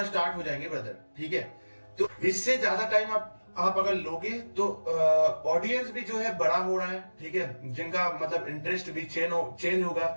स्टार्ट हो जाएंगे ब्रदर, ठीक है। तो इससे ज्यादा टाइम आप अगर लोगे तो ऑडियंस भी जो है बड़ा हो रहा है, ठीक है, जिनका मतलब इंटरेस्ट भी चेंज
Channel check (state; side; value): inverted; both; correlation -1.00